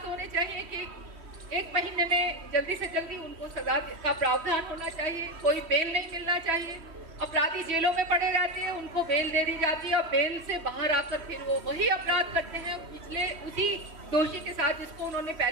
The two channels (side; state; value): left; late; 3.1 ms